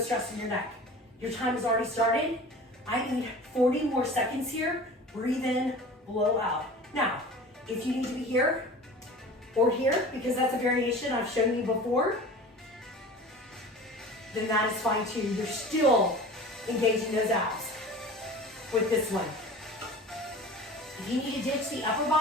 in your neck. Your time has already started. I need 40 more seconds here. Breathe in, blow out. Now, if you need to be here or here, because that's a variation I've shown you before, then that is fine too. You're still engaging those abs with this one. If you need to ditch the upper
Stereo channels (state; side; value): normal; both; correlation 0.39